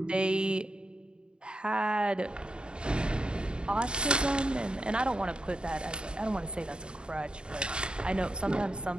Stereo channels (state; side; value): late; left; 0.051 ms